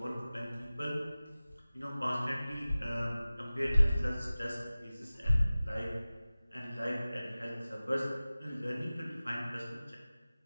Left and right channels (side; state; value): both; inverted; correlation -0.97